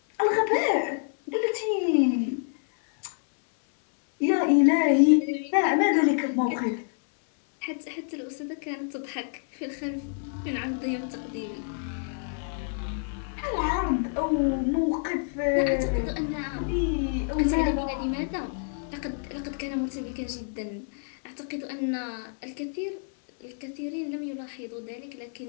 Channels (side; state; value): right; silent; 60 dB below the other